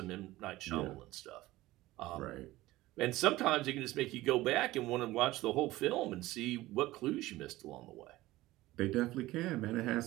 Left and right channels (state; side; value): quieter; left; 17.6 dB